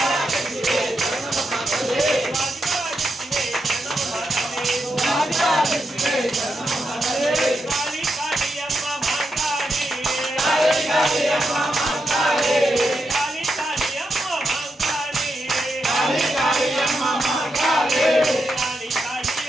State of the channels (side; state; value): both; normal; correlation 0.85